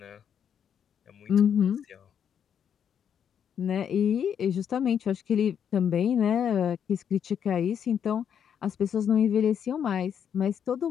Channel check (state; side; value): quieter; right; 8.3 dB